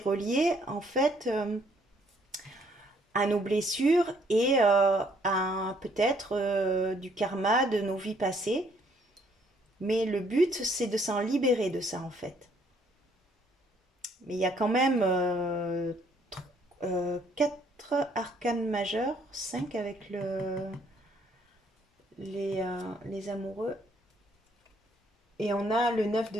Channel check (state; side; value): normal; both; correlation 0.66